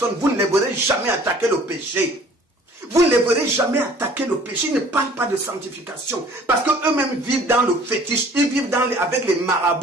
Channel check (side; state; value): both; normal; correlation 0.53